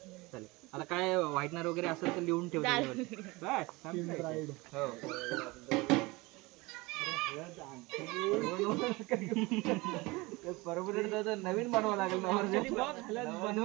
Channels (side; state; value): left; quieter; 23.3 dB